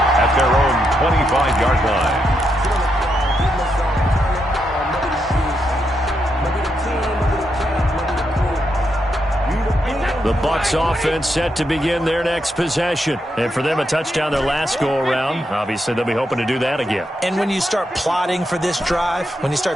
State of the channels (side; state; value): both; normal; correlation 0.82